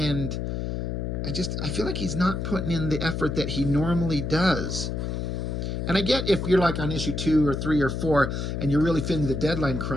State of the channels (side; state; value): left; noise; hum, 2 dB below the sound